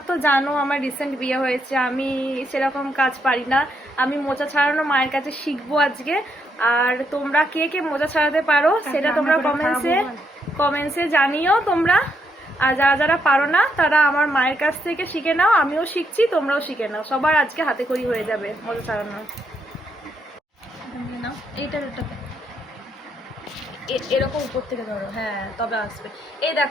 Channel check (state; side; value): normal; both; correlation 0.76